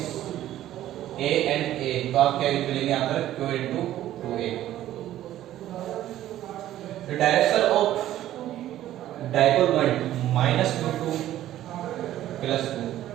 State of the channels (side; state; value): left; quieter; 13.2 dB